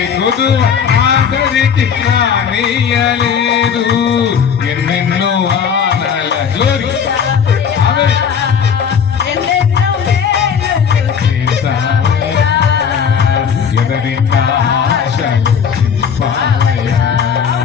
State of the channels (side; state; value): right; quieter; 7.1 dB